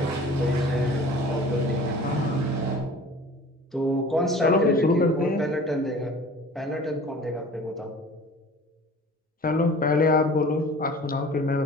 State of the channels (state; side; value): normal; both; correlation 0.44